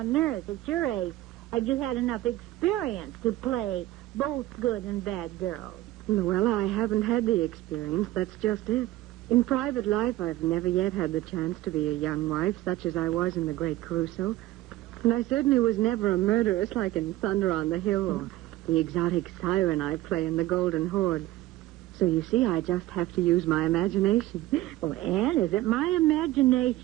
earth, at your age, have you had enough experience to play both good and bad girls? Louella, I haven't had the experience. That's just it. In private life, I've never yet had the chance to be a young wife, such as I was in The Great Caruso. And I certainly was never a murderess like in Thunder on the Hill or the exotic siren I play in The Golden Horde. So you see, I just have to use my imagination. Well, Ann, is it my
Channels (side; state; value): left; quieter; 16.2 dB